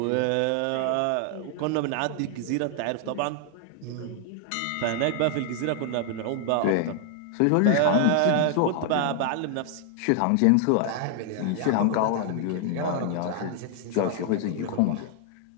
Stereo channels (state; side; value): different; both; correlation 0.00